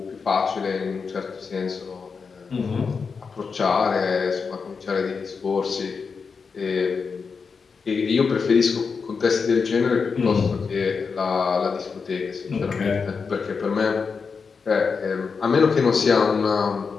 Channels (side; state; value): right; quieter; 5.3 dB